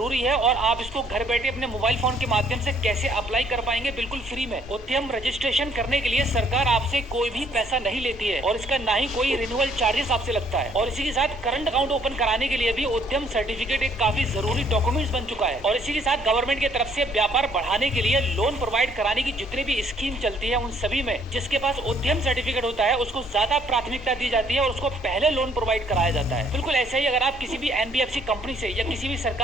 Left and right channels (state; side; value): normal; both; correlation 0.64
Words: है, और आप इसको घर बैठे अपने मोबाइल फोन के माध्यम से कैसे अप्लाई कर पाएंगे बिल्कुल फ्री में। उद्यम रजिस्ट्रेशन करने के लिए सरकार आपसे कोई भी पैसा नहीं लेती है, और इसका ना ही कोई रिन्यूअल चार्जेस आपसे लगता है। और इसी के साथ करंट अकाउंट ओपन कराने के लिए भी उद्यम सर्टिफिकेट एक काफी जरूरी डॉक्यूमेंट्स बन चुका है। और इसी के साथ गवर्नमेंट की तरफ से व्यापार बढ़ाने के लिए लोन प्रोवाइड कराने की जितनी भी स्कीम चलती है उन सभी में जिसके पास उद्यम सर्टिफिकेट होता है उसको ज्यादा प्राथमिकता दी जाती है और उसको पहले लोन प्रोवाइड कराया जाता है। बिल्कुल ऐसा ही अगर आप किसी भी एनबीएफसी कंपनी से या किसी भी